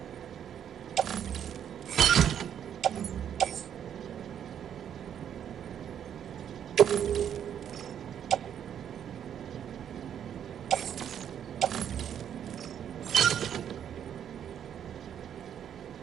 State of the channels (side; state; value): left; quieter; 9.2 dB